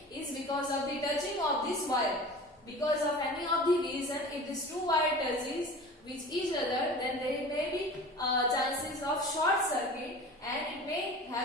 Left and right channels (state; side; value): normal; both; correlation 0.38